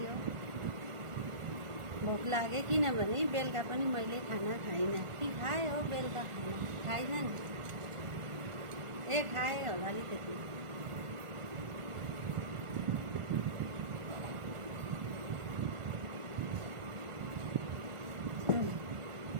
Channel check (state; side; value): late; left; 1.4 ms